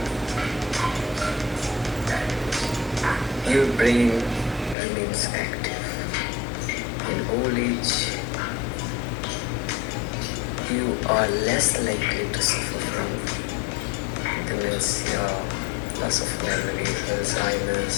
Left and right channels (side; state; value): right; drops out; at 4.8 s